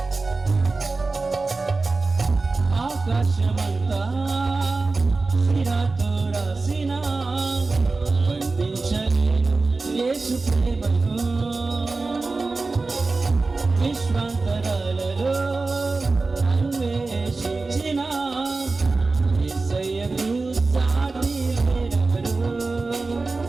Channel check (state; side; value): quieter; left; 3.7 dB